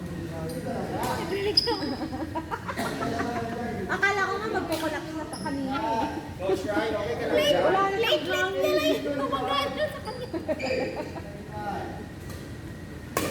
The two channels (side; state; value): both; identical; correlation 1.00